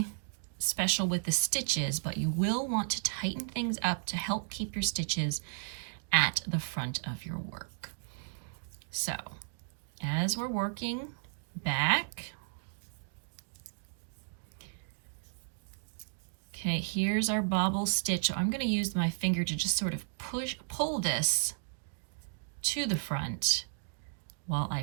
special with the stitches, but you will want to tighten things up to help keep your stitches at the front of your work. So as we're working back, okay, here's our bobble stitch. So I'm going to use my finger to just sort of pull this to the front while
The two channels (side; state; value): left; silent; digital silence